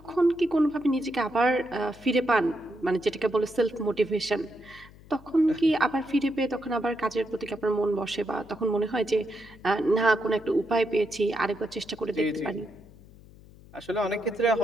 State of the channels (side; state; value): left; noise; hum, 22 dB below the sound